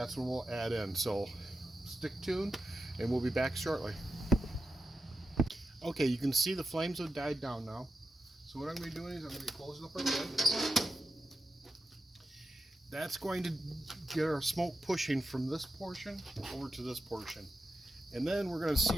when we'll add in. So stick tuned, and we'll be back shortly. Okay, you can see the flames have died down now. So what I'm going to be doing is I'm going to be closing up our lid. That's going to get our smoke pushing from this portion over to this portion. And then we're going to see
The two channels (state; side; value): normal; both; correlation 0.89